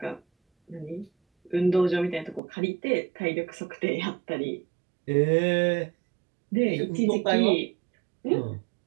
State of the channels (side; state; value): left; drops out; at 2.4 s